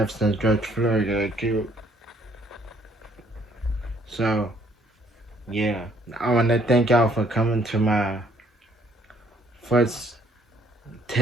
since George Floyd got killed. So, yeah. I want to thank y'all for coming to my first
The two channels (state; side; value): normal; both; correlation 0.64